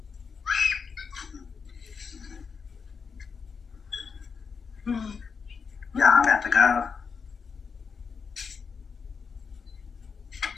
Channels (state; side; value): quieter; right; 5.7 dB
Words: Yeah, I'm about to go.